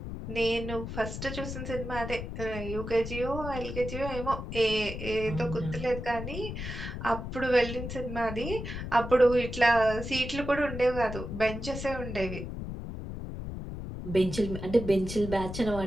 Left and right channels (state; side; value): noise; left; rumble, 7 dB below the sound